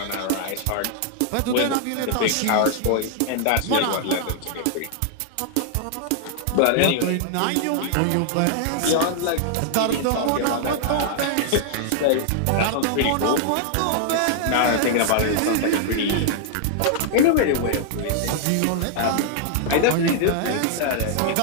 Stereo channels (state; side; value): different; both; correlation -0.01